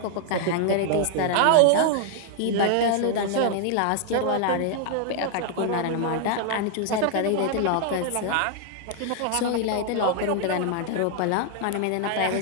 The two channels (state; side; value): different; both; correlation 0.00